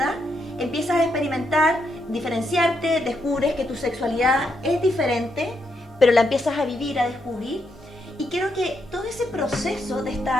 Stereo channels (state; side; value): normal; both; correlation 0.79